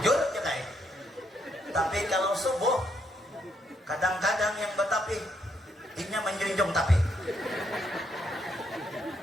aja kayak tapi kalau subuh kadang-kadang yang betapi inya menjunjung tapi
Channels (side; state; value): both; normal; correlation 0.74